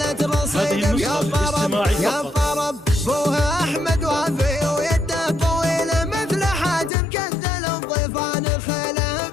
رصيد. يا طرب يا طرب بوها احمد وافي ويده طويله مثل حاتم كذل الضيفان الخيله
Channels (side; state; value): right; drops out; at 6.9 s